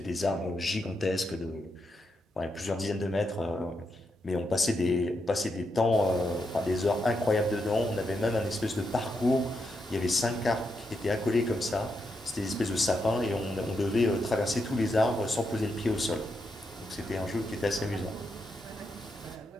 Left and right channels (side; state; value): both; normal; correlation 0.83